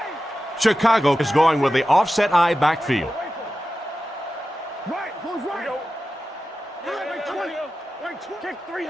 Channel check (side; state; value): both; normal; correlation 0.93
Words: Chicago is going with the offset eye backfield.